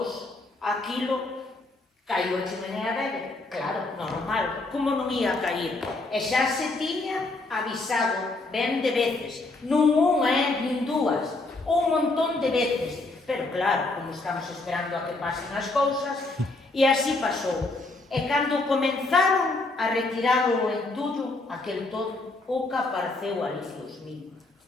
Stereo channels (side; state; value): right; quieter; 3.1 dB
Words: aquilo caiu a chimenea dele. Claro, normal, como non ia cair? E xa se tiña avisado ben de veces. Non unha, nin dúas, un montón de veces. Pero claro, como estamos esperando a que pasen as cousas, e así pasou. E cando comenzaron a retirar o entullo, aquel todo, o que apareceu ali, Dios mío,